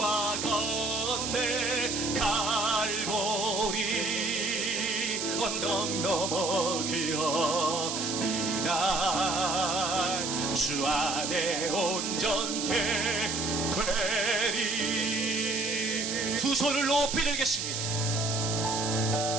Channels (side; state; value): right; noise; hiss, 2 dB below the sound